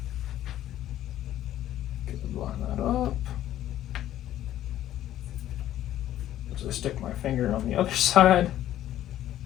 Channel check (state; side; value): quieter; right; 12.6 dB